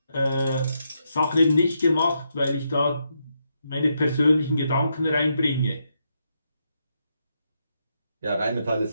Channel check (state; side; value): inverted; both; correlation -0.81